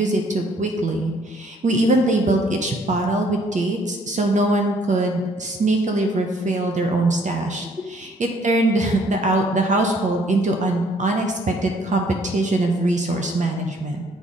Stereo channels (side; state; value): both; normal; correlation 0.62